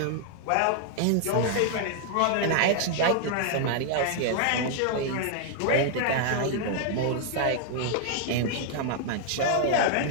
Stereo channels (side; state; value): both; different; correlation 0.00